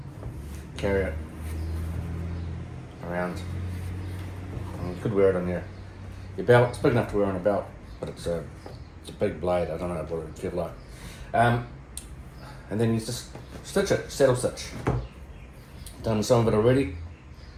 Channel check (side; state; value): both; identical; correlation 1.00